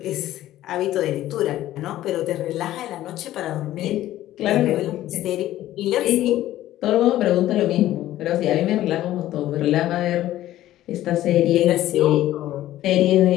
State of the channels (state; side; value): quieter; right; 14.1 dB